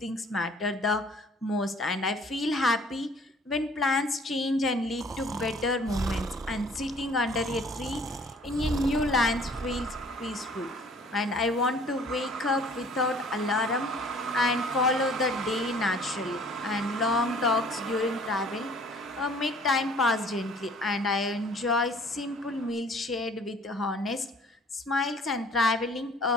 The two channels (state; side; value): normal; both; correlation 0.54